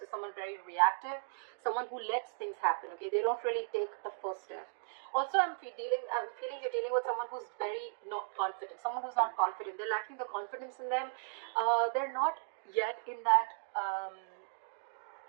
is someone very reactive, someone who lets things happen, okay? They don't really take the first step. Also, I'm feeling you're dealing with someone who's very not confident, someone who's not confident. They're lacking the confidence in them. They're not yet in that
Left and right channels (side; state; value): left; silent; digital silence